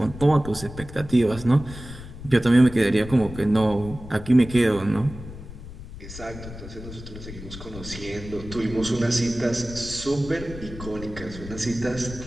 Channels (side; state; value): left; noise; rumble, 13 dB below the sound